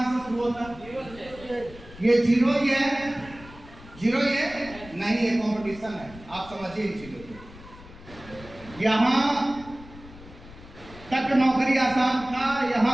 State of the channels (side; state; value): left; noise; rumble, 18 dB below the sound